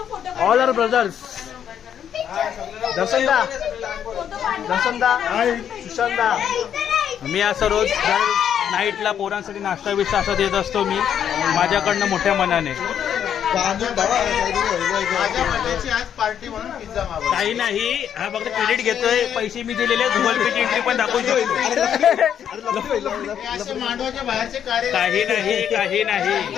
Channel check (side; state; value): right; quieter; 9.0 dB